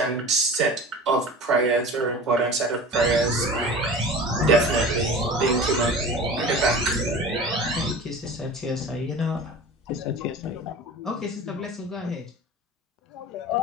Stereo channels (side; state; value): both; normal; correlation 0.37